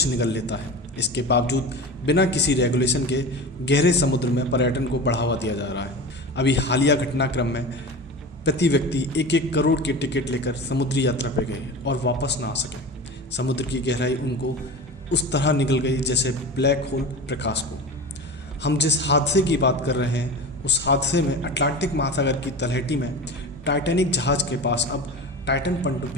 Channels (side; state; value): both; normal; correlation 0.30